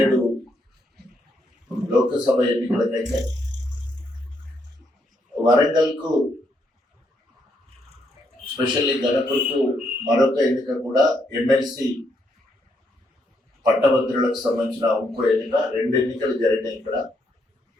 లోకసభ ఎన్నికలకైతే వరంగల్కు స్పెషల్లీ గణపురకు మరొక ఎన్నిక కూడా ఎమ్మెల్సీ పట్టభద్రులకు సంబంధించిన ఇంకో ఎన్నిక, 2 ఎన్నికలు జరిగినాయి. ఇక్కడ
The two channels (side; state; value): both; normal; correlation 0.75